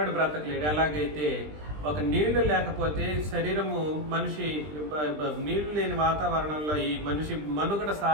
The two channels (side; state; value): left; late; 20 ms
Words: బ్రతకలేడు. ఎలాగైతే ఒక నీళ్లు లేకపోతే శరీరము మనిషి నీళ్లు లేని వాతావరణంలో ఈ మనిషి మనుగడ